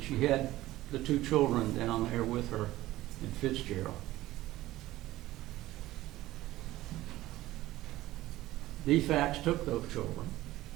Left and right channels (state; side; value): quieter; left; 16.2 dB